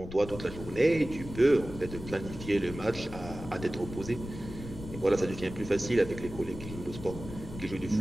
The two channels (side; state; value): left; noise; rumble, 11 dB below the sound